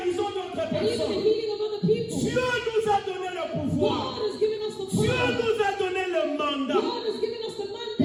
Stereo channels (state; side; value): identical; both; correlation 1.00